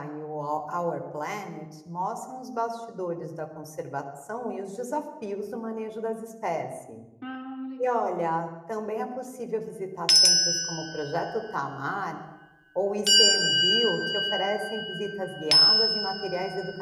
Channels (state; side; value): identical; both; correlation 1.00